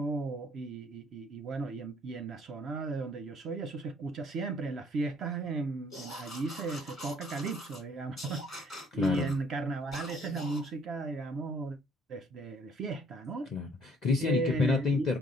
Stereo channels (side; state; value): both; normal; correlation 0.61